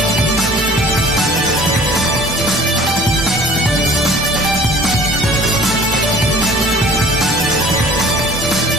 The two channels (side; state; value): both; normal; correlation 0.48